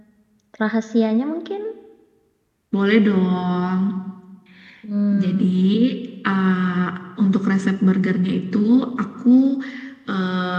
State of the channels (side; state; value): both; identical; correlation 1.00